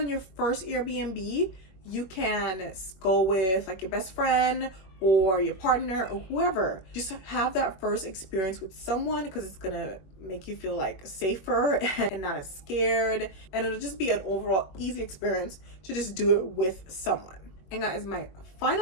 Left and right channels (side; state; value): right; late; 21 ms